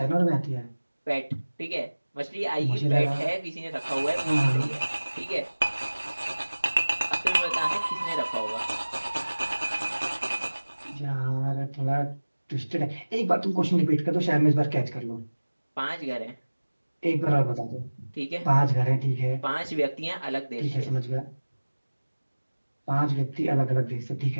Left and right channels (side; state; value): both; inverted; correlation -1.00